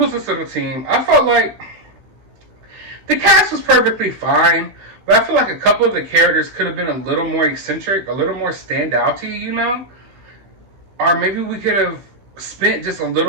this little team. I felt like the cast was perfectly fine, but I feel like a couple of the characters could have been a little more eccentric, a little more standouty, you know? Or maybe we could have spent just a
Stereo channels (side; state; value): left; late; 15 ms